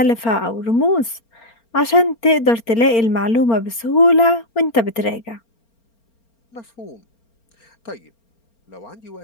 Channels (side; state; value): right; late; 4.4 ms